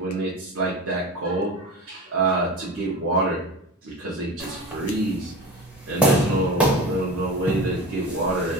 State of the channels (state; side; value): normal; both; correlation 0.30